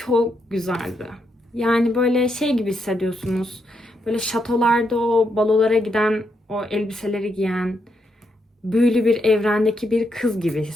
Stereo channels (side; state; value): both; normal; correlation 0.80